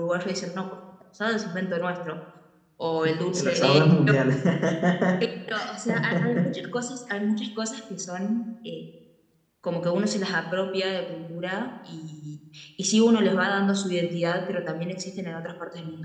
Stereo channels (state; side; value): identical; both; correlation 1.00